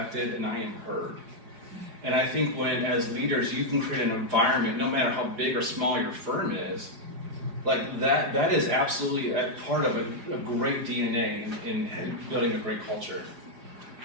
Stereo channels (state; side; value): late; left; 4.9 ms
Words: and I am heard. And I think when, as leaders, you can create an environment, no matter how big or small your firm is, that is absolutely a part of a great DNA in building a great culture.